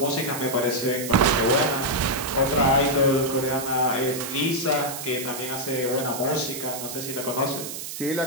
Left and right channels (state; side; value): noise; right; hiss, 8 dB below the sound